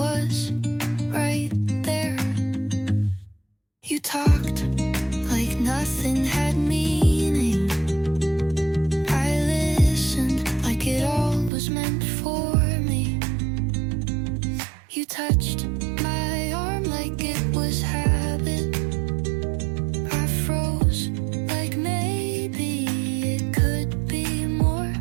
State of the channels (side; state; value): left; drops out; at 11.5 s